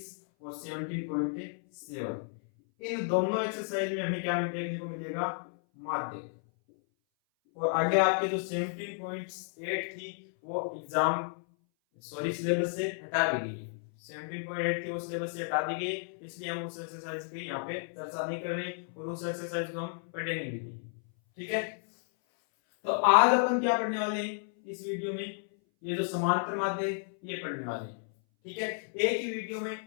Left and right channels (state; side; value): silent; right; 56 dB below the other